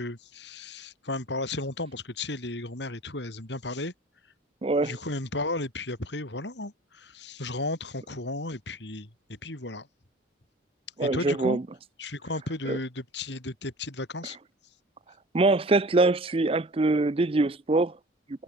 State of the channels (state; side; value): normal; both; correlation 0.42